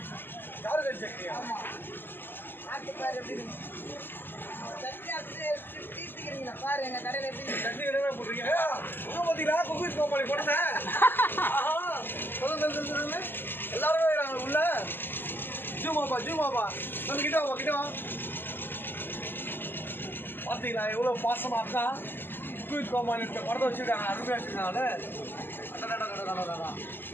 கார்கட் சட்னியா? பாரு எங்க கடையில எப்படி சட்னி கடை போடுறீங்க. பார்த்தீங்களா குப்பீர் கோமாளி போட்டேன். சொல்லுங்க எல்லாருமே வராங்க உள்ள. ஜூமாப்பா நம்ம கிட்ட வா. பார்த்தீங்களா எவ்வளோ பாசமா அக்கா குப்பீர் கோமாளி படத்தை வச்சுருக்காங்க, அருமையாக வச்சுருக்காங்க.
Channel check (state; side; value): late; right; 0.096 ms